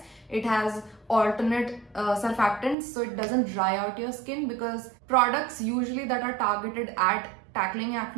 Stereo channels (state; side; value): drops out; left; at 2.8 s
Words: It has alternate surfactants, so it doesn't dry out your skin, because products usually that are targeted at tackling